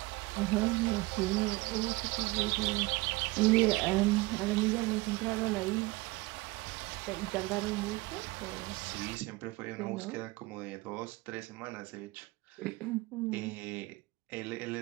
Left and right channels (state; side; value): quieter; left; 22.2 dB